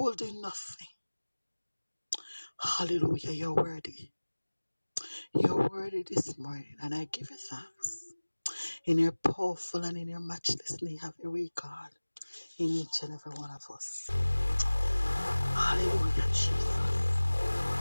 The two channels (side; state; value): both; inverted; correlation -1.00